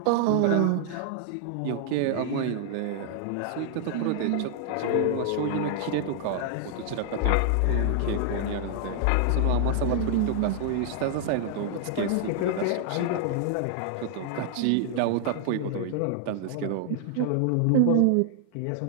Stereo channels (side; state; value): both; different; correlation 0.00